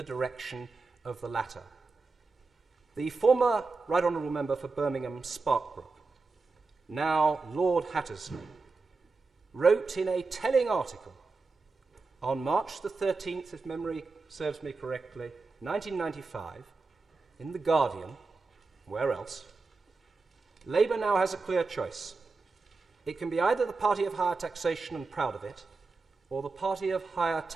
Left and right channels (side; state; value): left; quieter; 4.0 dB